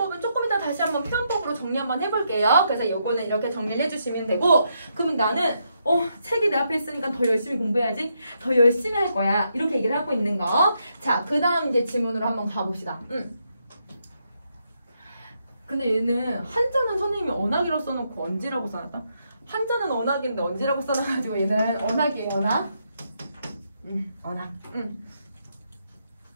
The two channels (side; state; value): both; inverted; correlation -0.79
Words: 조금 이따 다시 한번 표현법으로 정리 한번 해볼게요. 그래서 요거는 이렇게 정리를 해주시면 되고 그러면 나는 책이 내 앞에 있으니까 더 열심히 공부해야지. 더 열심히 할 거야. 이렇게 얘기를 하고 있는 거. 자, 그 다음 이제 질문으로 한번 가봅시다. 근데 얘는 한자는 선생님이 언학이라고 써놓고 언지라고 써놨다. 한자는 언학인데 언지라고 써놔가지고 얘는 언학이에요. 언학. 언학.